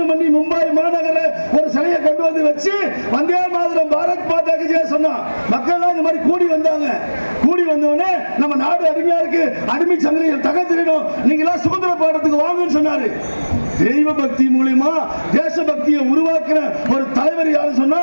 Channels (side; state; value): both; inverted; correlation -1.00